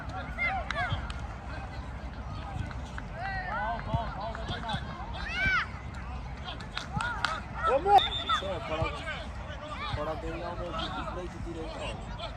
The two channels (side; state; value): both; identical; correlation 1.00